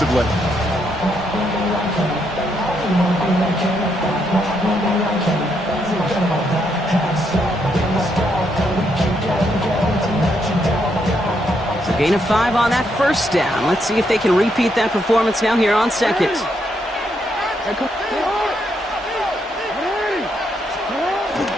So gain of 5 on that first down. Let's see if they can repeat that performance now here on 2nd.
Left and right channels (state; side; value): normal; both; correlation 0.77